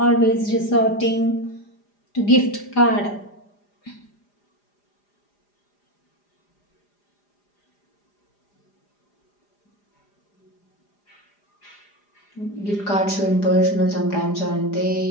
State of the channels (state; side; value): late; right; 4.9 ms